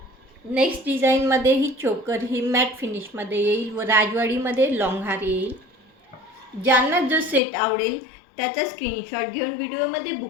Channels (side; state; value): right; drops out; at 7.4 s